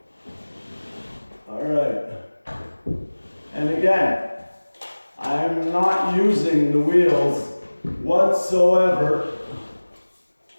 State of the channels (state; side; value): inverted; both; correlation -1.00